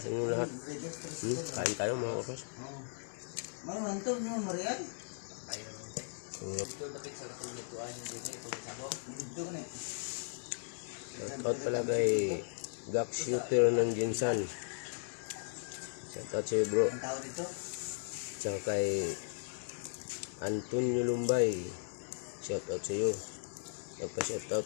inyong lahat. Kain tayo mga kaprats. Shoutout pala kay Gak Shooter ng Jinsan. Shoutout sa'yo bro. Tsaka kay Antonio Lumbay. Shoutout sa'yo.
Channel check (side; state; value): right; silent; 53 dB below the other